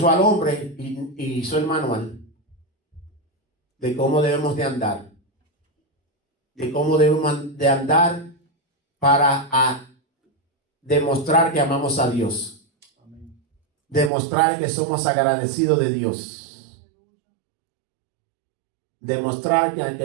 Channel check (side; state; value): left; drops out; at 14.1 s